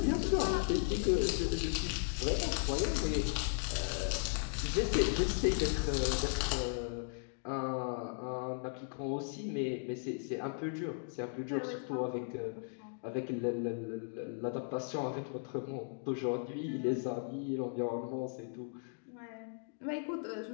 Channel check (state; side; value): silent; right; digital silence